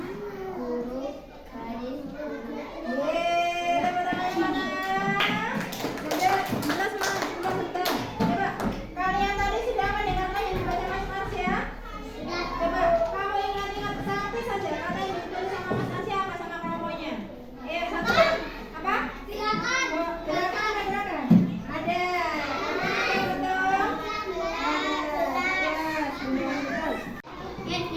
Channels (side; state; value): both; identical; correlation 1.00